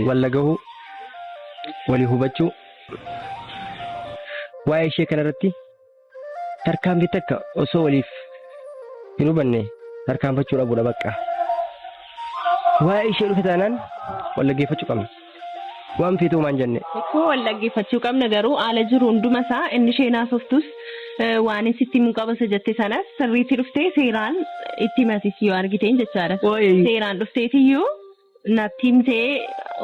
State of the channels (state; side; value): identical; both; correlation 1.00